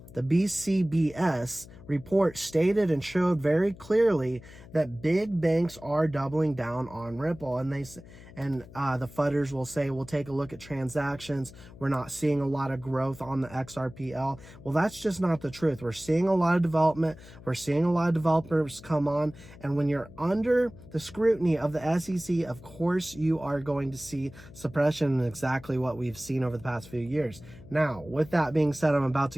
the BCBS report stated and showed very clearly that big banks are doubling down on Ripple, and the FUDers will say, we'll take a look at transactions. We're not seeing a lot of growth on the XRPL. Well, that's just not the truth. We're seeing a lot of development. We're seeing a lot of developers come on. And when you're under the scrutiny of the SEC, of course, you are going to see suppression, and exactly what we've seen over the past few years. Now, with that being said, I'm about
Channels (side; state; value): left; noise; hum, 19 dB below the sound